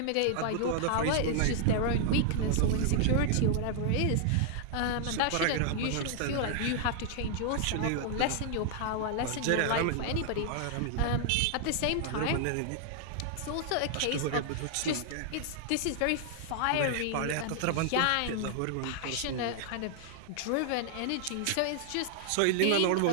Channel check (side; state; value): both; different; correlation 0.00